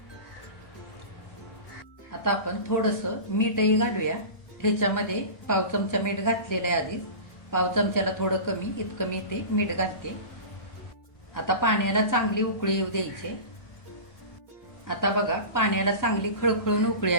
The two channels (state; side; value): late; right; 1.4 ms